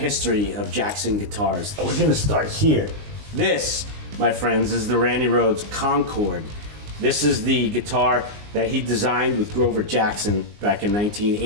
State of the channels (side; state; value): left; late; 19 ms